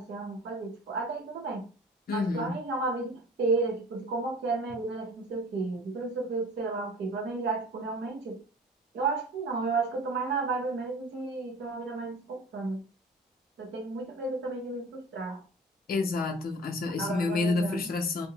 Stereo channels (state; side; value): normal; both; correlation 0.44